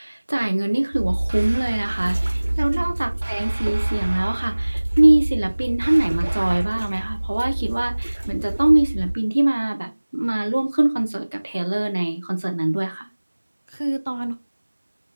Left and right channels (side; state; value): both; inverted; correlation -1.00